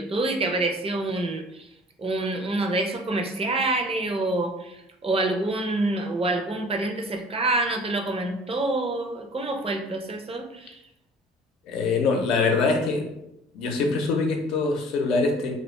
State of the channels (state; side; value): normal; both; correlation 0.48